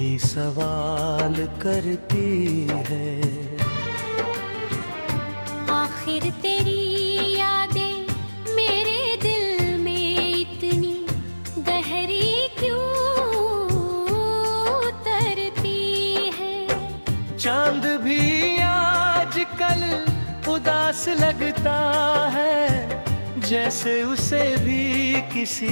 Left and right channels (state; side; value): inverted; both; correlation -1.00